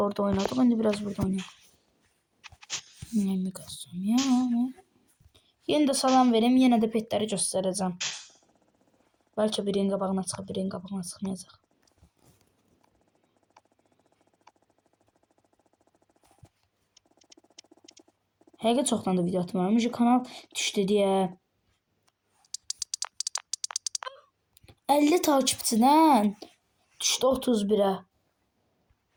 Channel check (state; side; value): identical; both; correlation 1.00